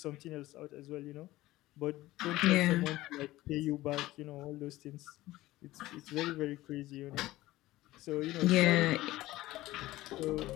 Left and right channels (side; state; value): right; quieter; 17.1 dB